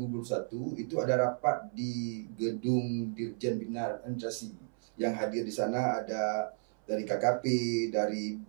itu ada rapat di gedung Dirjen Bina Administrasi. Yang hadir di sana ada dari KKP, dari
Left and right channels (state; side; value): silent; left; 55 dB below the other